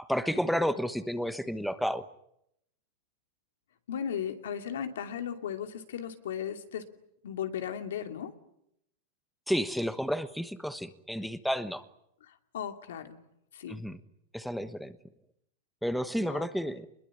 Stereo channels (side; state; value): both; normal; correlation 0.66